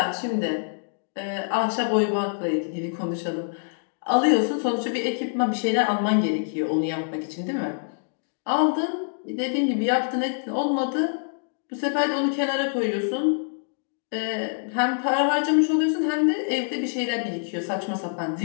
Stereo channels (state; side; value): silent; right; digital silence